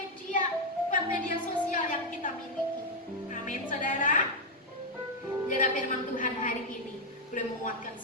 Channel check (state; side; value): normal; both; correlation 0.01